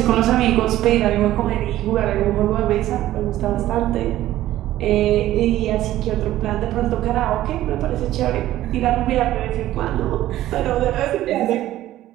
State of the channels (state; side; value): quieter; left; 14.3 dB